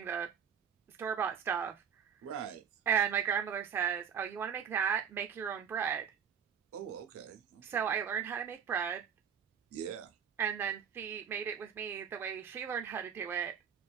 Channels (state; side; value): quieter; left; 7.7 dB